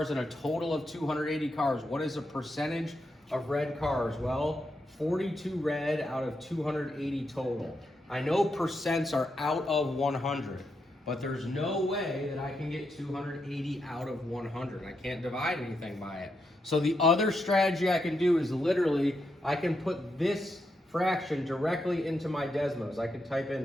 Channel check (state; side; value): normal; both; correlation 0.83